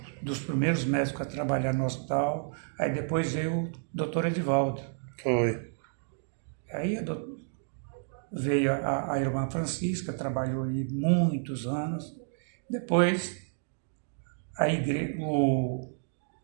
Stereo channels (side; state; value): left; silent; digital silence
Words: dos primeiros médicos a trabalhar no hospital. Aí depois veio o doutor Edivaldo. Foi. Aí veio a irmã Francisca, trabalhou aí muitos anos. Depois,